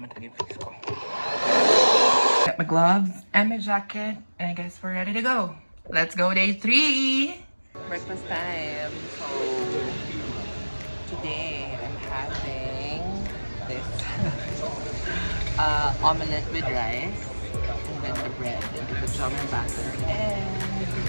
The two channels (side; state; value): both; inverted; correlation -1.00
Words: talaga yung face ko. Got my gloves and my jacket, and I guess we're ready to go. Let's go day 3! Breakfast time. So, today I'm having this omelette with rice, and then the bread, and the jam and batter, and this